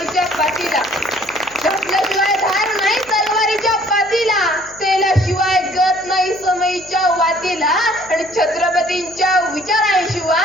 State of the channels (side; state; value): left; noise; hum, 25 dB below the sound